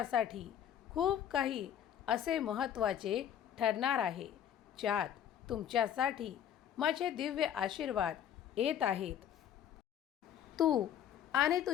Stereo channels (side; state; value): right; quieter; 9.9 dB